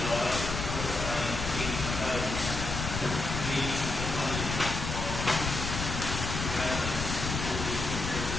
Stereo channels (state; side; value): noise; left; rumble, 4 dB below the sound